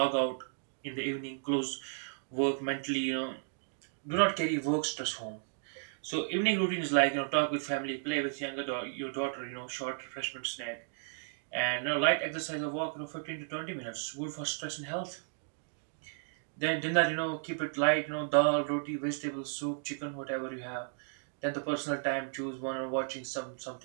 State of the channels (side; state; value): left; silent; digital silence